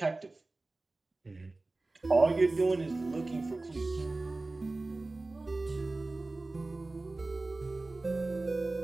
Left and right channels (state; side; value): quieter; left; 3.1 dB